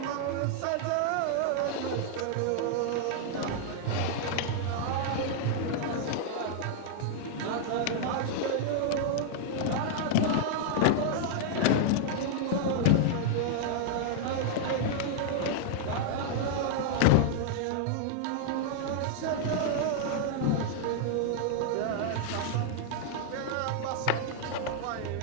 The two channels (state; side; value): different; both; correlation 0.00